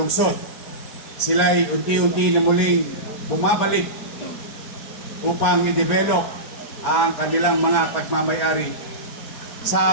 Sila'y unti-unti na muling bumabalik upang i-develop ang kanilang mga pagmamayari.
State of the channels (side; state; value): right; late; 4.6 ms